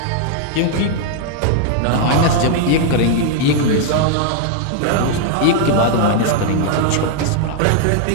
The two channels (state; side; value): different; both; correlation 0.00